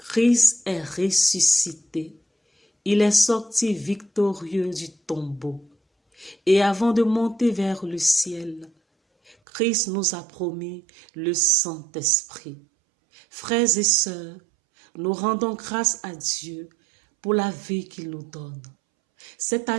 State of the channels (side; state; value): left; drops out; at 9.3 s